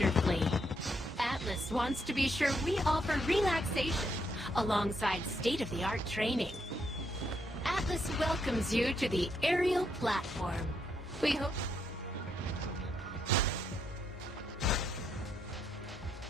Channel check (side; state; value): both; normal; correlation 0.77